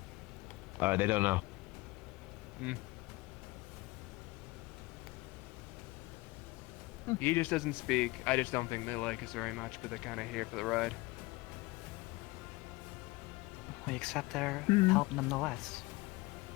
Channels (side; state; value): right; quieter; 22.0 dB